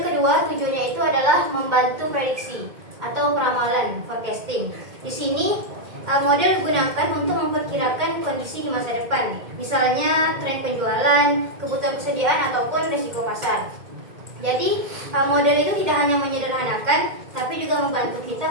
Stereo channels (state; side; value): late; left; 2.1 ms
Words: kedua tujuannya itu adalah membantu prediksi atau peramalan, forecasting. Di sini model digunakan untuk memperkirakan kondisi di masa depan, misalnya tren penjualan, kebutuhan persediaan ataupun risiko pasar. Jadi model itu tidak hanya menyederhanakan, tapi juga membantu kita